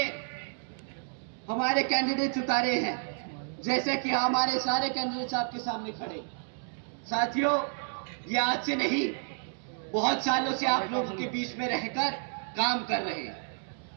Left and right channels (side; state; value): left; silent; digital silence